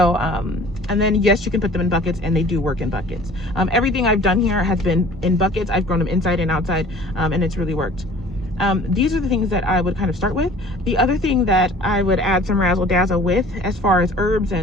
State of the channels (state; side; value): normal; both; correlation 0.47